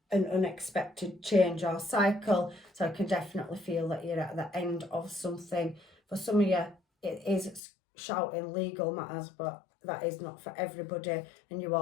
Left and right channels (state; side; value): drops out; right; at 7.6 s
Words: an unexpected change or cycle. So I can definitely feel that you're at the end of something. For some of you, it is shouting legal matters, but that is not for everybody, and you